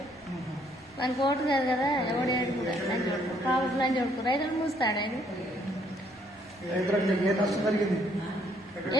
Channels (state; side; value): normal; both; correlation 0.67